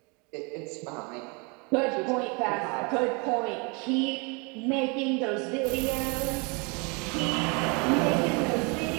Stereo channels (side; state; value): left; quieter; 31.4 dB